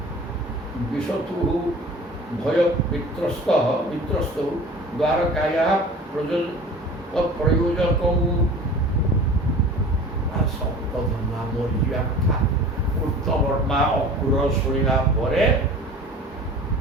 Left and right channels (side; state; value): both; normal; correlation 0.42